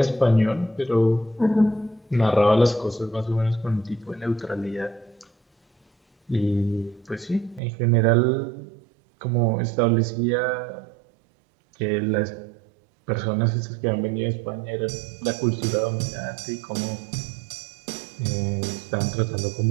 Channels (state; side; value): drops out; left; at 7.6 s